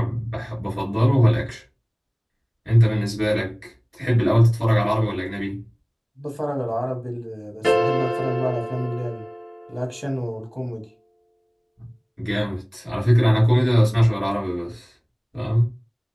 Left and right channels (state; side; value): identical; both; correlation 1.00